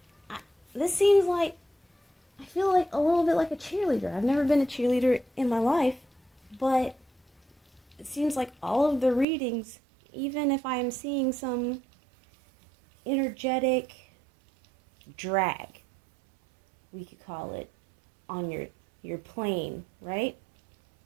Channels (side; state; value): left; drops out; at 9.2 s